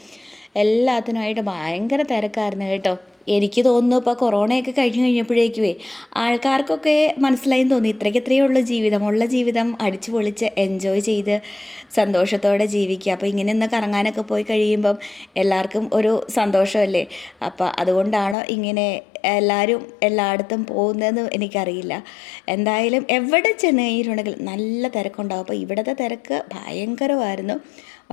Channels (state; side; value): drops out; right; at 18.4 s